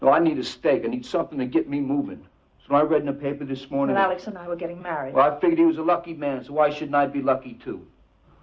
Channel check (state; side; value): identical; both; correlation 1.00